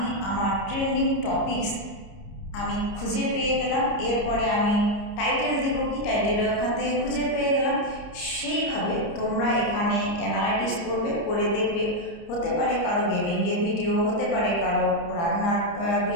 আমার ট্রেন্ডিং টপিকস আমি খুঁজে পেয়ে গেলাম। এরপরে আমি টাইটেল দিব, কি টাইটেল ওখান থেকে খুঁজে পেয়ে গেলাম। সেইভাবে তোমরা এখানে অ্যানালাইটিক্স করবে, করে দেখবে, হতে পারে কারো গেমিংয়ের ভিডিও, হতে পারে কারো রান্নার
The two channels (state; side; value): late; right; 30 ms